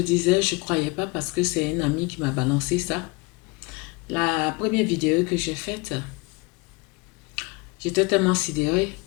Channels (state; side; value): quieter; right; 26.6 dB